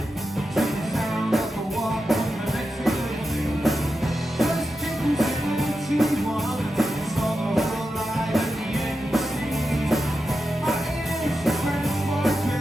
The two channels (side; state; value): both; normal; correlation 0.89